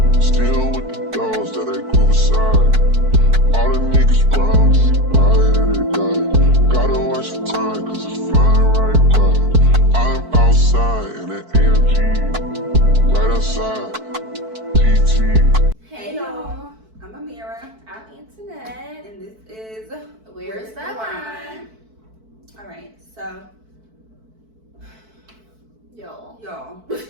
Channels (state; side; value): late; left; 4.6 ms